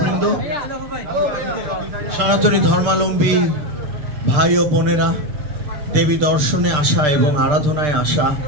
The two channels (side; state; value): left; late; 6.7 ms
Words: সনাতনী ধর্মাবলম্বী ভাই ও বোনেরা, দেবী দর্শনে আসা এবং আরাধনায় আসা,